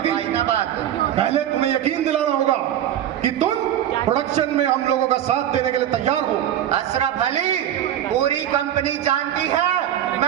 भाई ना बात। पहले तुम्हें यकीन दिलाना होगा कि तुम प्रोडक्शन में हम लोगों का साथ देने के लिए तैयार हो। अशरफ अली, पूरी कंपनी जानती है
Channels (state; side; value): quieter; left; 11.1 dB